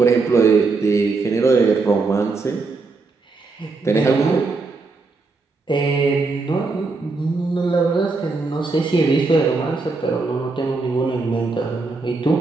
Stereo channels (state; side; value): quieter; left; 3.9 dB